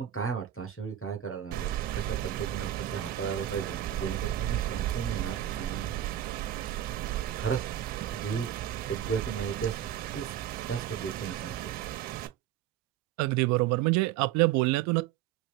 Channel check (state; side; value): quieter; left; 11.5 dB